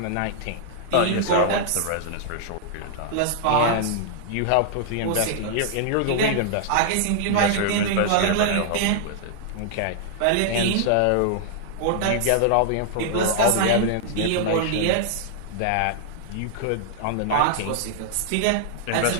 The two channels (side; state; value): both; different; correlation -0.01